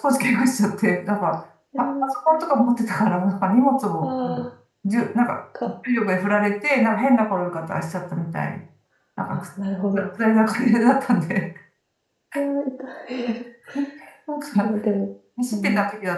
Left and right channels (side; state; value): both; identical; correlation 1.00